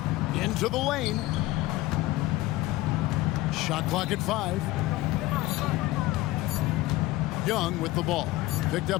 Into the lane. Shot clock at 5. Young with the ball. Picked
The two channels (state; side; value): quieter; right; 17.7 dB